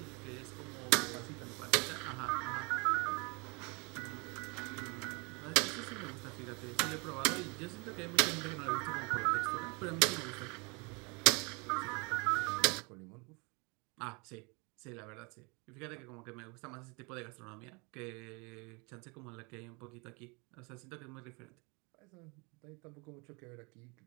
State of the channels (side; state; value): left; quieter; 30.1 dB